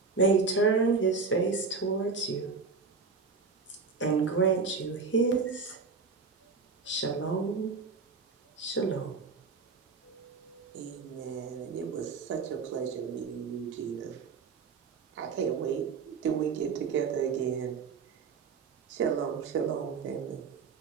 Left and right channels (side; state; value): left; quieter; 4.9 dB